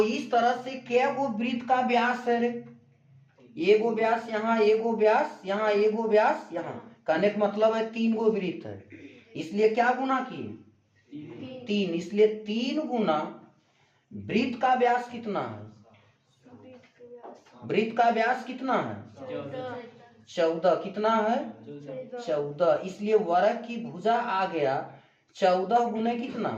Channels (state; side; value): identical; both; correlation 1.00